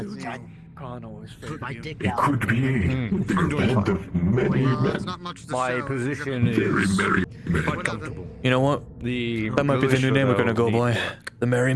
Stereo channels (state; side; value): identical; both; correlation 1.00